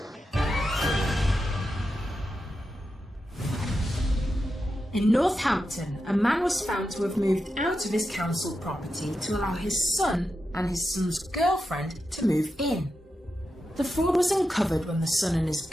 In Northampton, a man was found to have moved out of his council property to allow his son and his son's girlfriend to move in. The fraud was uncovered when the son and his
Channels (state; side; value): normal; both; correlation 0.89